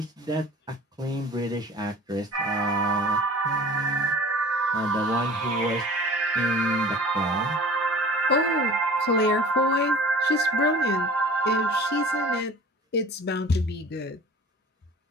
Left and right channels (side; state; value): both; normal; correlation 0.43